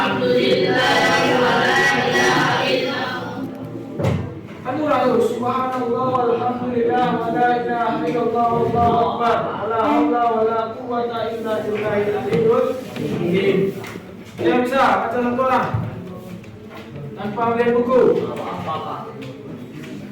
Subhanallah walhamdulillah wa la ilaha illallah wallahu akbar wa la haula wa la quwwata illa billahil aliyyil azim. Yang bisa baca satu orang tanpa melihat buku.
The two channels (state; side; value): identical; both; correlation 1.00